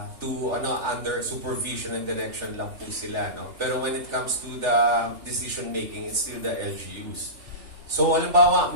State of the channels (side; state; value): left; late; 3.4 ms